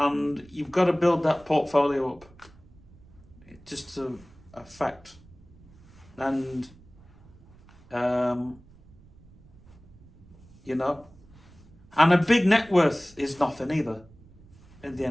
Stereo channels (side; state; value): right; noise; rumble, 25 dB below the sound